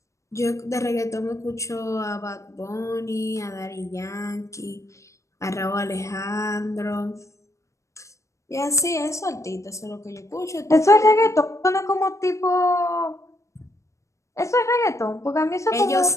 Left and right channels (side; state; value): right; late; 0.15 ms